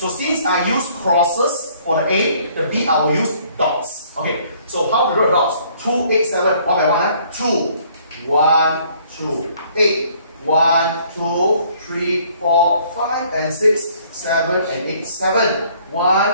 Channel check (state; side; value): inverted; both; correlation -0.60